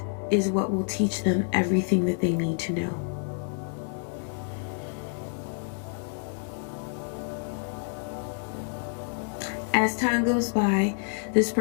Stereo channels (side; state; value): right; silent; 59 dB below the other